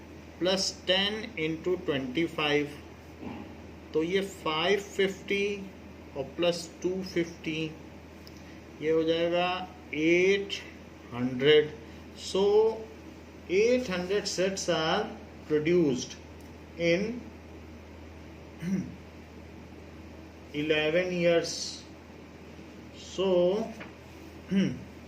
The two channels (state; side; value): identical; both; correlation 1.00